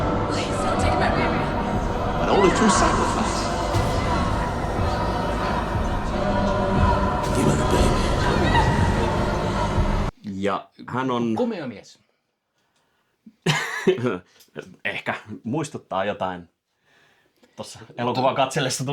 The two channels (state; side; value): identical; both; correlation 1.00